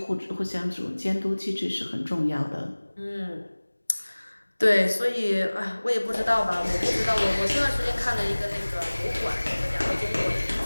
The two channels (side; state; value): both; inverted; correlation -1.00